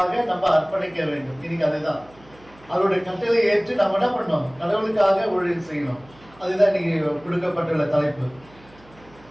நம்ம அர்ப்பணிக்க வேண்டும். இன்னைக்கு அதுதான் அவருடைய கட்டளை ஏற்று நம்ம என்ன பண்ணோம், கடவுளுக்காக ஊழியம் செய்யணும். அதுதான் இன்னைக்கு கொடுக்கப்பட்டுள்ள தலைப்பு.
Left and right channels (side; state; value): right; noise; hum, 26 dB below the sound